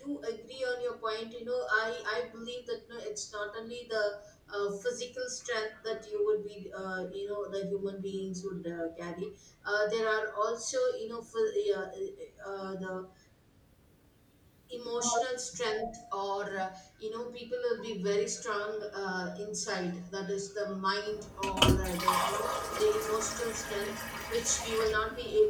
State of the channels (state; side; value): identical; both; correlation 1.00